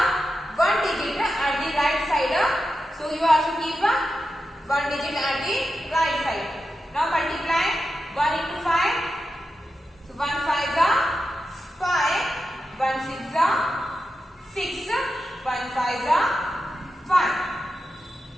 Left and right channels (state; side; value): normal; both; correlation 0.90